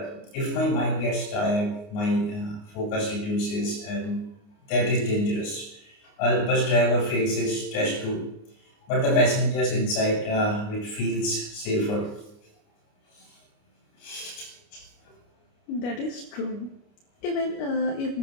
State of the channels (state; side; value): late; right; 29 ms